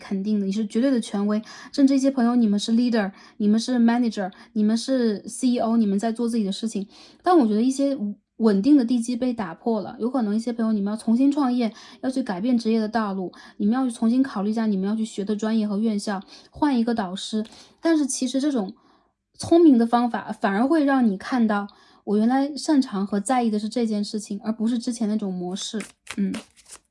定的，你是绝对的权威。甚至一些朋友，你们是 leader， 你们是 manager， 你们是 CEO， 你们在做自己的事情。但我觉得一些稳定的地基被打破了，有可能一些朋友你们要重新创业，要去改变职业的道路，你们要去重新考虑一下你们要去学的专业和院校，换一个导师。但是其实这种聪明的方法反而会让你看到，我原来擅长和在意的是这件事情，而不是之前那种模式。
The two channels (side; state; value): both; identical; correlation 1.00